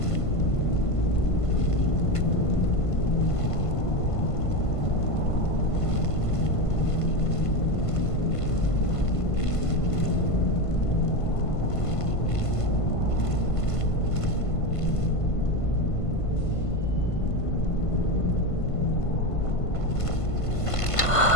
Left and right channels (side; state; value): right; late; 1.5 ms